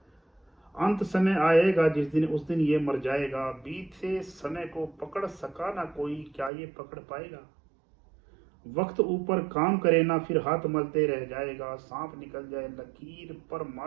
अंत समय आएगा जिस दिन, उस दिन ये मर जाएगा। बीते समय को पकड़ सका ना कोई, क्या ये पकड़ पाएगा? वक्त ऊपर काम करे ना, फिर हाथ मलते रह जाएगा। सांप निकल जाए लकीर पर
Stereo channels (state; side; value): drops out; left; at 6.5 s